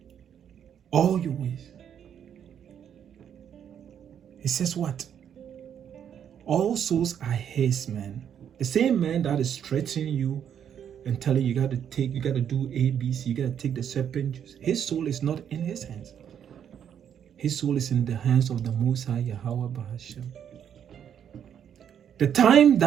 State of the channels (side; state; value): left; quieter; 8.8 dB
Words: All your ways. He says what? All souls are his, man. The same man that is threatening you and telling you got to do A, B, C, you got to take the serpent juice. His soul is not in his hands. His soul is in the hands of the Most High, Yahawah, Bahashem. The time